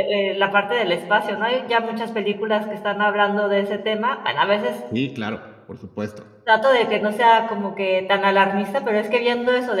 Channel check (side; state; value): both; identical; correlation 1.00